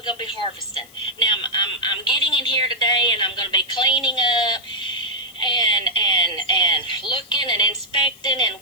going to be harvesting. Now I'm getting in here today, and I'm going to be cleaning up and looking and inspecting and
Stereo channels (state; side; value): noise; left; hiss, 24 dB below the sound